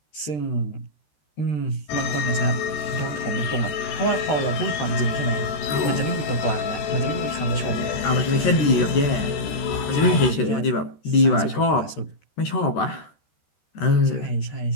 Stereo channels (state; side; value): late; right; 13 ms